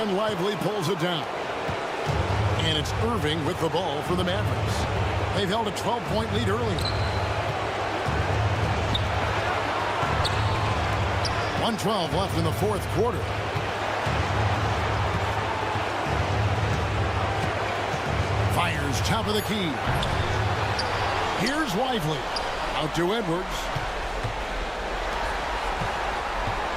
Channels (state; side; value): identical; both; correlation 1.00